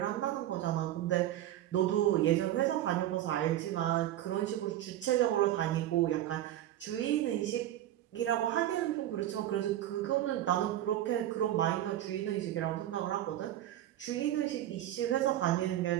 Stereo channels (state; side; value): quieter; left; 12.9 dB